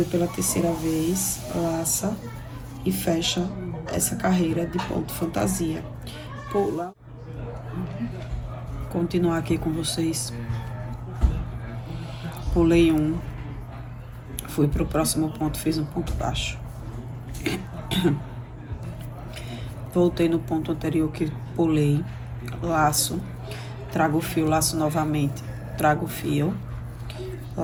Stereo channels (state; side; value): identical; both; correlation 1.00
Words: pela terceira vez, laça e fecha essa carreira de ponto fantasia. Pula. Continuar aqui com vocês. Pulei um, fui pro próximo ponto, fiz um ponto baixo. Voltei no ponto anterior que pulei, laço, trago o fio, laço novamente, trago o fio,